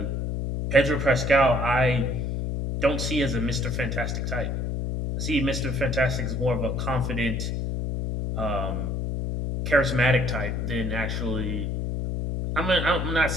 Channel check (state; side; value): noise; left; hum, 1 dB below the sound